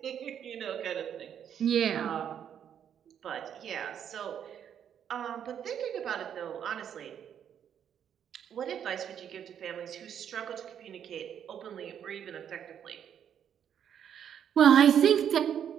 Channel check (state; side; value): quieter; left; 8.9 dB